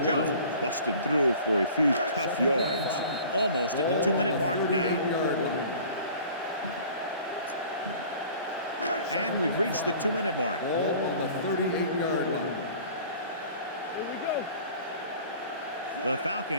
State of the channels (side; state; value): both; inverted; correlation -0.46